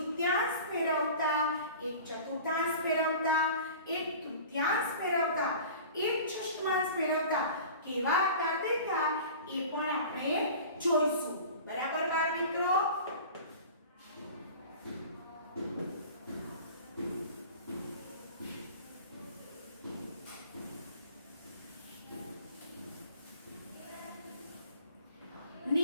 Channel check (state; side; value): inverted; both; correlation -0.40